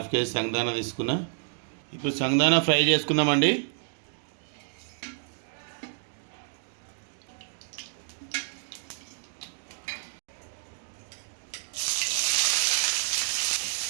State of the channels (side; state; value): left; silent; digital silence